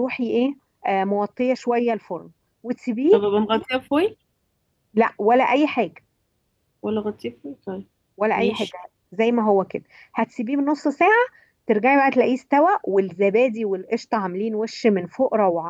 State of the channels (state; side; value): identical; both; correlation 1.00